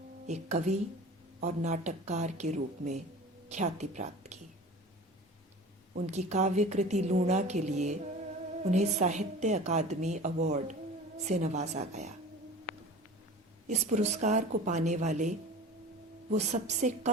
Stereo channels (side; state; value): both; normal; correlation 0.39